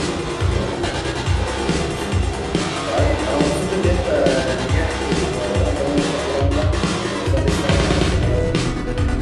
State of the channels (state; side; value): identical; both; correlation 1.00